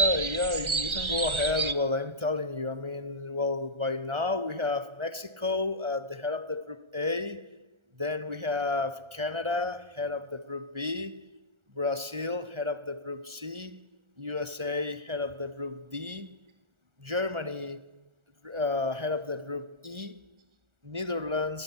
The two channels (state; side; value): late; left; 1.4 ms